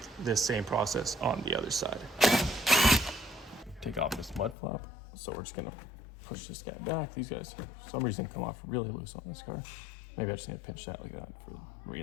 this same process on the other side. Take off this mud flap. So we're just gonna push this guy back. These guys, for some reason, come off really loose on this car. Maybe I just need to pinch that like that for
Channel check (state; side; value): drops out; right; at 4.5 s